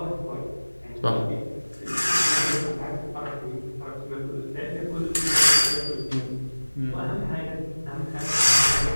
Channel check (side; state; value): both; inverted; correlation -1.00